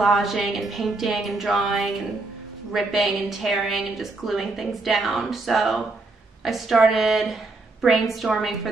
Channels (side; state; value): left; quieter; 3.3 dB